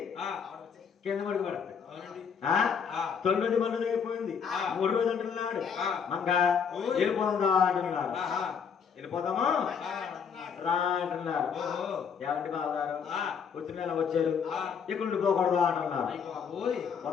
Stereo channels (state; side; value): quieter; right; 6.7 dB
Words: కింద పడుకు పడతాయి. 9 మంది అయిపోయింది. 3 రోజులు అంటున్నాడు. మంగ వెళ్ళిపోదా అంటున్నాడు. వెళ్ళిపోదామా రా అంటున్నారు. ఏమంటే బావగారు వచ్చిన వచ్చారు, ఇక్కడ నుండి పోకూడదు అంటున్నారు.